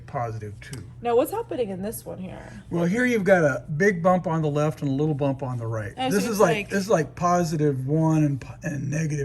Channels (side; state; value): both; identical; correlation 1.00